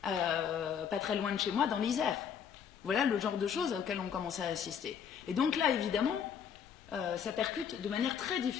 pas très loin de chez moi, dans l'Isère. Voilà le genre de choses auxquelles on commence à assister. Et donc là, évidemment, ça percute de manière très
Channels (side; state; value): right; quieter; 7.7 dB